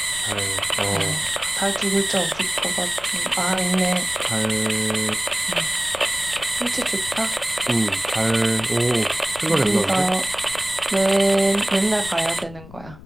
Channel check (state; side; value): noise; left; rumble, 17 dB below the sound